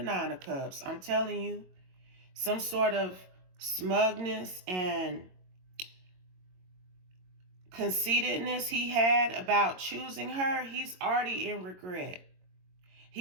of Cups. I'm telling you, some sort of smugness and conceitedness he had about choosing her, he's already in regret.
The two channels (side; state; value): left; late; 22 ms